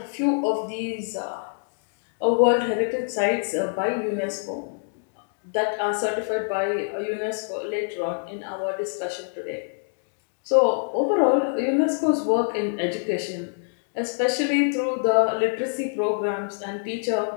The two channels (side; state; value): right; silent; digital silence